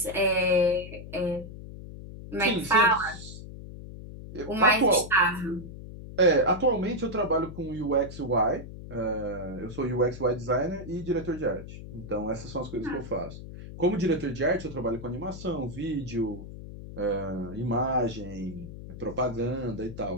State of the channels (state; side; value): noise; left; hum, 12 dB below the sound